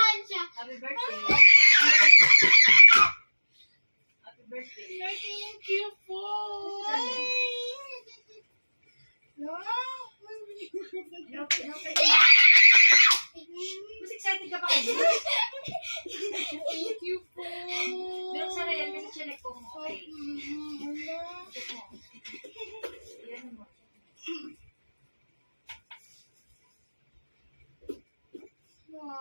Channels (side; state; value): both; inverted; correlation -1.00